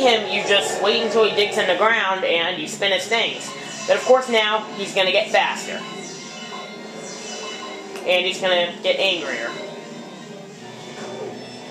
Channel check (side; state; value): both; identical; correlation 1.00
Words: you just wait until he digs in the ground and you spin his things. But of course now, he's going to get faster. And he's going to get angrier.